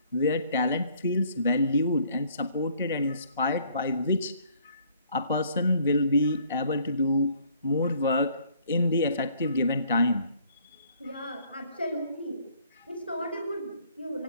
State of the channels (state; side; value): inverted; both; correlation -0.60